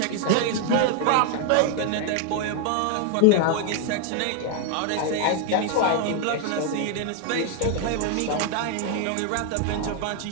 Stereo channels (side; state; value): both; different; correlation 0.00